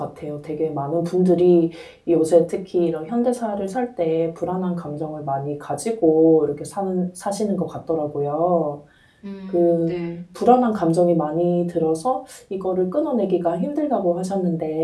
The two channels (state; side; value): identical; both; correlation 1.00